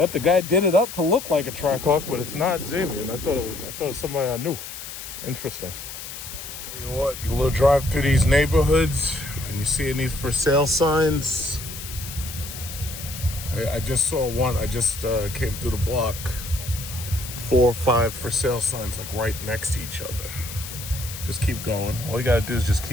the guy did it up to look like a Trackhawk, but it's not Zamian. I thought it was somebody I knew. Interesting. You know what? You little drive through these neighborhoods and you see these for sale signs. I just saw one. I just came through the block. 4 or 5 for sale signs like right next to each other. Just keep going. All you gotta do is just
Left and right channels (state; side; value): noise; left; hiss, 10 dB below the sound